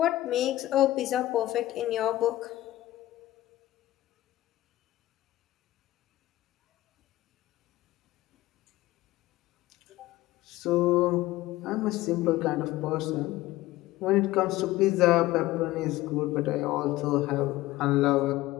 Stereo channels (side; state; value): right; quieter; 16.5 dB